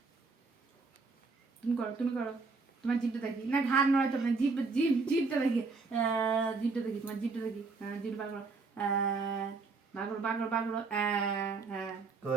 তুমি করো তোমার জিভটা দেখি, না ঘাড় নড়াইতে হবে না, জিভটা দেখি তোমার জিভটা দেখি, জিভ বার করো বাগড়ো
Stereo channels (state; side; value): quieter; left; 4.2 dB